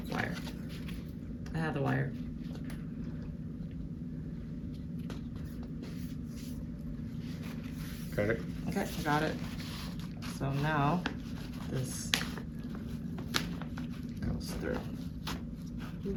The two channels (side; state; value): both; identical; correlation 1.00